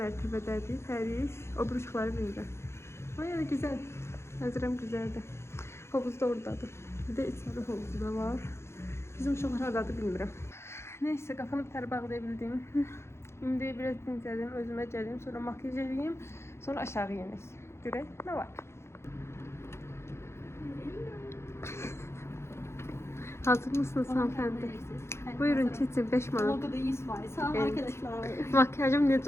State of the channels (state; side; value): late; right; 0.13 ms